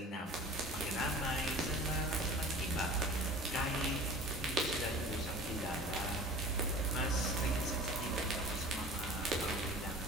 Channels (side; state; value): both; normal; correlation 0.41